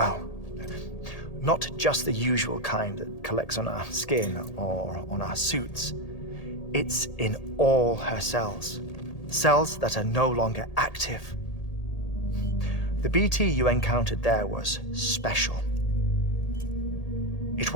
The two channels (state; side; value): late; right; 1.8 ms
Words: Not just the usual kind that collects on our skin or on our suits. It's in all her cells. Cells that are no longer active. The BT you encountered there was special. It